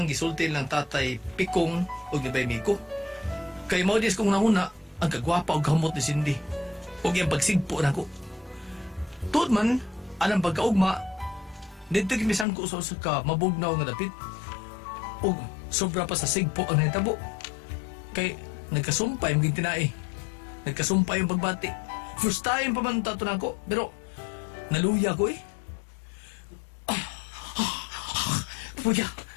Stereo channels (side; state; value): right; drops out; at 12.5 s